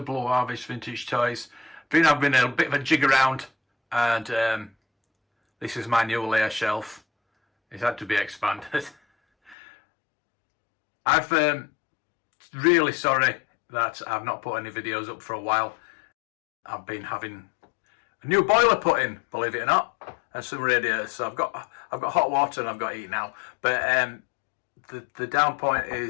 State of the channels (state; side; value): drops out; right; at 9.6 s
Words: Blue Harvest Vintage Toys. Been having a bit of a jig around, and this is my new layer shelf. It's had to be expanded. I'm really sorry that I've not put any videos up for a while. I've been having a new boiler put in, believe it or not, and some radiators. So I've got hot water and I've got heat now. But the down point